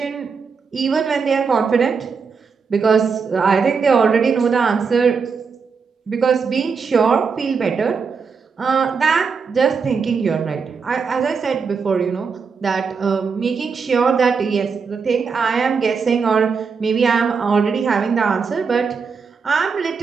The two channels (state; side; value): quieter; left; 5.5 dB